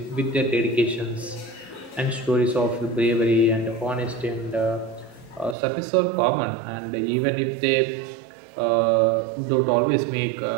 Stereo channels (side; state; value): left; drops out; at 5.6 s